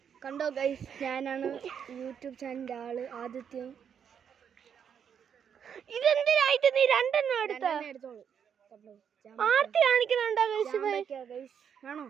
കണ്ടോ ഗൈസ്, ഞാനാണ് യൂട്യൂബ് ചാനലിൻ്റെ ആള് ആദിത്യം. ഇതെന്തിനായിട്ട് നീ രണ്ടെണ്ണം എടുത്തോളൂ. ആർത്തി കാണിക്കുന്നുണ്ടോ ഗൈസ്? ആണോ?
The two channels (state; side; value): quieter; left; 7.8 dB